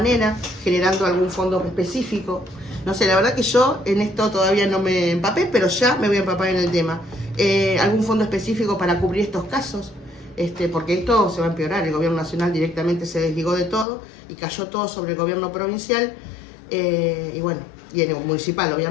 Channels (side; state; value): right; drops out; at 13.9 s